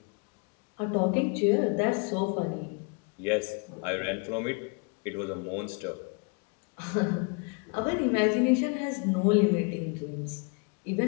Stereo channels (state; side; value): quieter; right; 33.9 dB